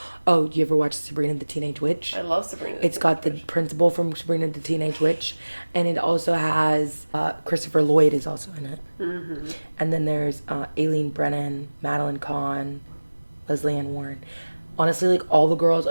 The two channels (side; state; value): both; inverted; correlation -1.00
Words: Oh, you ever watch Sabrina the Teenage Witch? I love Sabrina. It's got the principal from Sabrina the Teenage Witch, and it also has Christopher Lloyd is also in it. Mm-hmm. And then there's Aileen Brennan, Madeline Kahn, Leslie Ann Warren. Honestly, like, all the girls